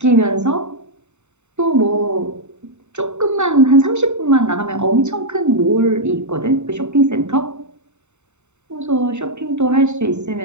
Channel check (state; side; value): late; left; 0.83 ms